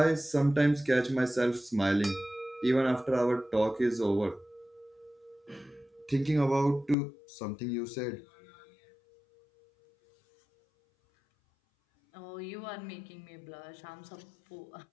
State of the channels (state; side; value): drops out; right; at 7.0 s